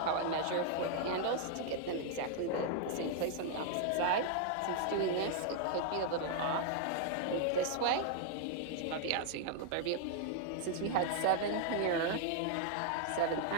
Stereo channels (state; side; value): different; both; correlation 0.00